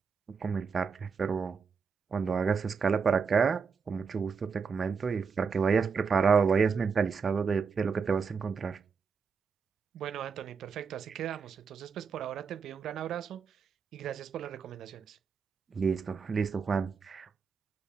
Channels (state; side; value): quieter; left; 5.7 dB